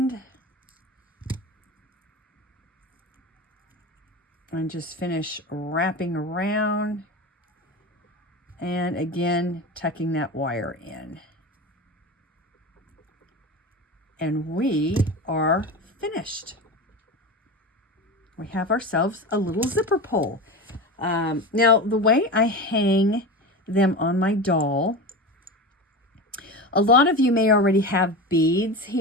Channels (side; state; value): both; normal; correlation 0.26